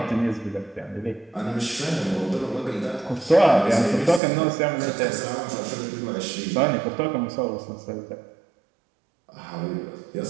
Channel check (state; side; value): drops out; left; at 4.2 s